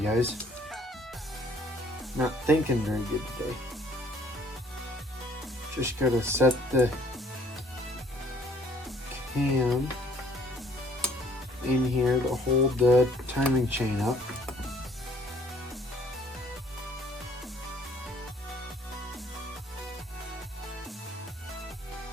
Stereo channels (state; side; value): normal; both; correlation 0.59